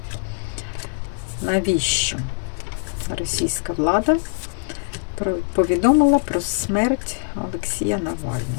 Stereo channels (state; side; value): silent; right; digital silence